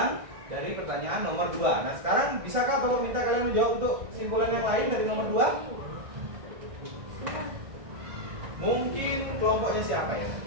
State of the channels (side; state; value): left; late; 1.6 ms